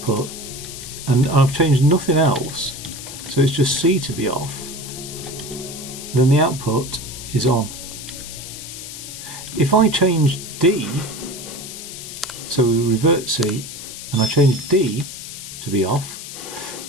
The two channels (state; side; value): noise; left; hiss, 11 dB below the sound